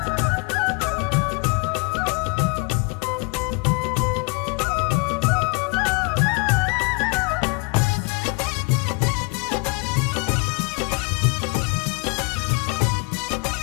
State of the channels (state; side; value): quieter; right; 31.5 dB